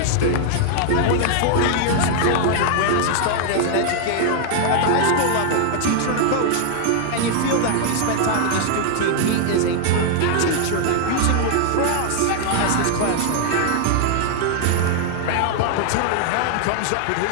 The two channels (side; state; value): both; different; correlation 0.00